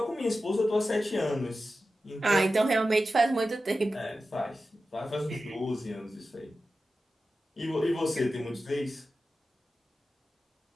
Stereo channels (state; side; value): normal; both; correlation 0.93